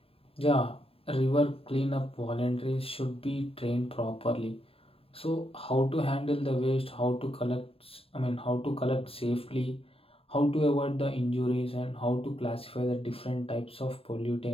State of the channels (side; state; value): right; late; 0.27 ms